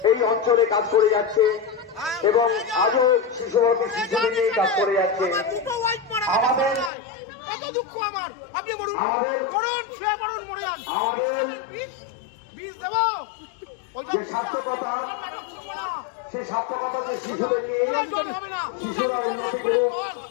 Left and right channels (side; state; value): right; drops out; at 6.9 s